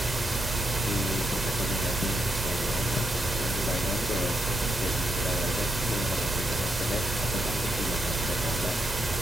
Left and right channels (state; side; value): normal; both; correlation 0.81